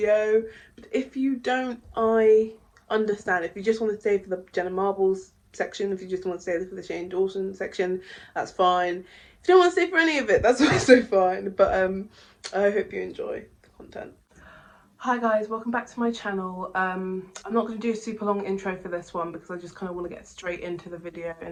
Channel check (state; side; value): identical; both; correlation 1.00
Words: But if you don't, I understand. If you just want to stay for the Jenna Marbles section, if you just want to stay for the Shane Dawson section, that's fine. If you don't want to stay for any of it, that's also fine. But I hope you enjoy the content. Hi guys, welcome back to my channel. I'm not going to do a super long intro for this one because I just kind of want to get straight into the video